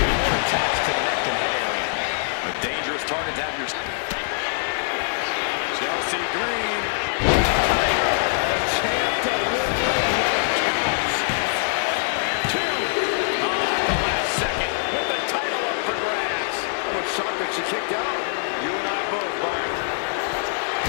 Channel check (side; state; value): right; silent; digital silence